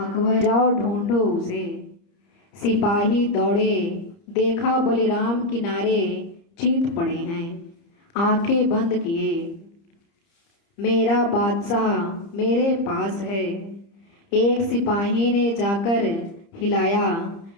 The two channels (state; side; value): late; right; 30 ms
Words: जाओ ढूंढो उसे। सिपाही दौड़े, देखा बलिराम किनारे चीत पड़े हैं। आंखें बंद किए, मेरा बादशाह मेरे पास है। एक सिपाही ने जाकर हिलाया,